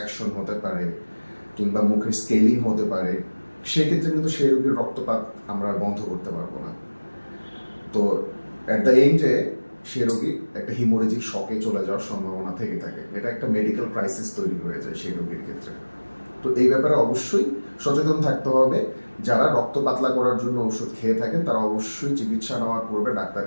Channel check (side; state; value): both; inverted; correlation -1.00